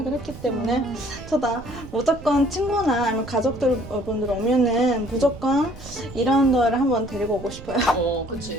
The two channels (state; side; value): noise; right; rumble, 15 dB below the sound